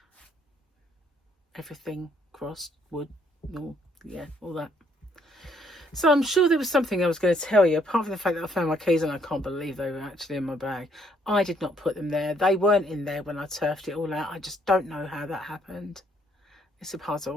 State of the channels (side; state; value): both; normal; correlation 0.68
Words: Everything crossed, wood, all, yeah, all that. So I'm sure there was something I was going to tell you, apart from the fact that I found my keys and I can't believe they were actually in my bag. I did not put them there. They weren't in there when I turfed it all out. I just don't know how that happened. It's a